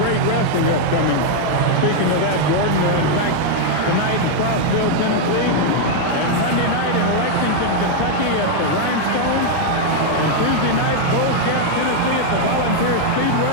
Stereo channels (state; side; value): different; both; correlation 0.00